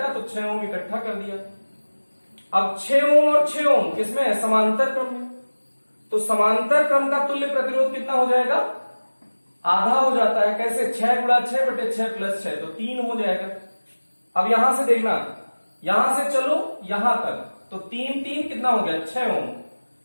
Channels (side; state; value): both; inverted; correlation -1.00